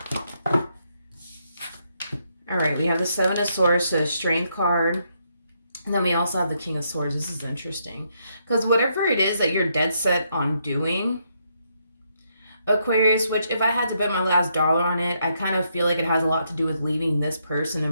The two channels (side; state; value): both; inverted; correlation -0.76